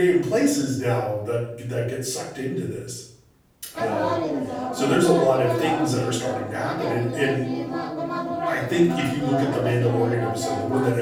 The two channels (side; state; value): both; identical; correlation 1.00